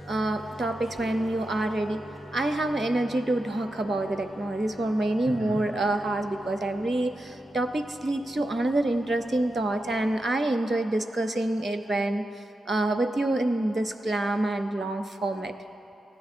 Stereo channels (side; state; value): both; normal; correlation 0.89